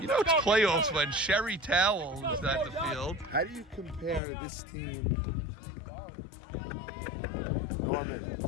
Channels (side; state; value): right; drops out; at 4.2 s